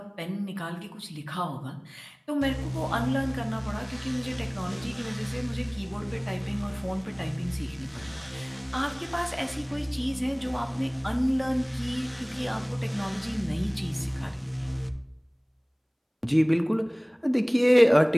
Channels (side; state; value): both; identical; correlation 1.00